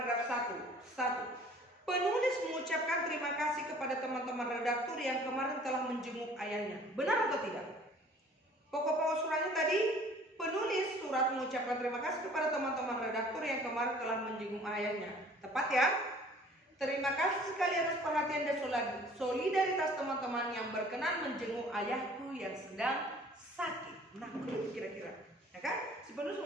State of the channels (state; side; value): normal; both; correlation 0.52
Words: 1. Penulis mengucapkan terima kasih kepada teman-teman redaktur yang kemarin telah menjenguk ayahnya. Benar atau tidak? Pokok-pokok suratnya tadi, penulis surat mengucapkan terima kasih kepada teman-teman redaktur yang kemarin telah menjenguk ayahnya. Tepat ya? Terima kasih sekali atas perhatian dan solidaritas teman-teman yang berkenan menjenguk ayahku yang sedang sakit. Nah, begitu kira-kira. Ya kan? Si penulis